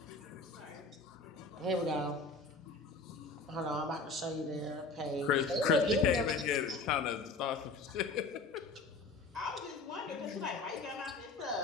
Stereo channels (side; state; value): right; quieter; 3.6 dB